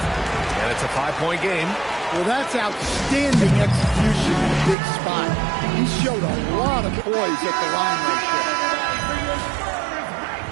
and it's a 5-point game. Well, that's outstanding execution in a big spot. He showed a lot of poise at the line right there.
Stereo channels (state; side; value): drops out; left; at 4.8 s